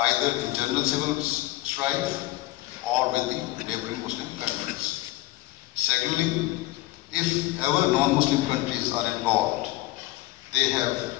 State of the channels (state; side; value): quieter; right; 17.8 dB